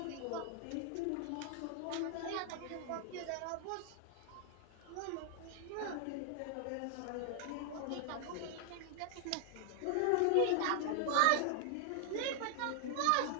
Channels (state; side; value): different; both; correlation 0.00